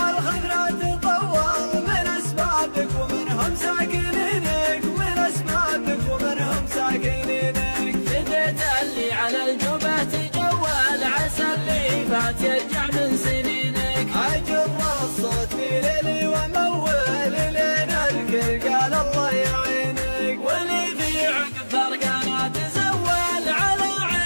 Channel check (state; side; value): inverted; both; correlation -1.00